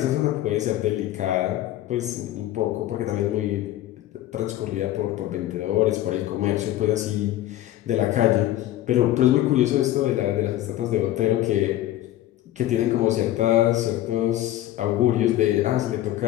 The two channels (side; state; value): right; quieter; 14.0 dB